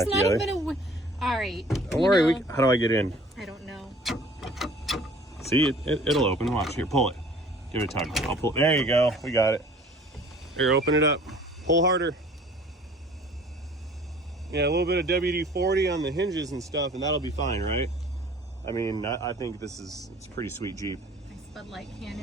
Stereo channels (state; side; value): normal; both; correlation 0.51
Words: together. All right. Don't worry. How do I get in? I don't know. See, it'll open. Watch. Here, pull it. Give it a tug. I'll pull. There you go. We got it. Here, open it up. Pull harder. Yeah, a little bit of WD-40 on the hinges and stuff, and that'll be fine, right? I mean, I think it's a pretty sweet Jeep. Nice Bud Light can